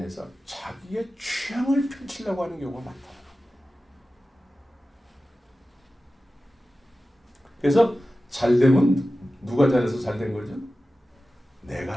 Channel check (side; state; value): both; normal; correlation 0.95